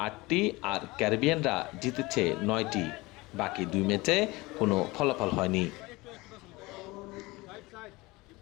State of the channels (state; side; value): quieter; right; 22.2 dB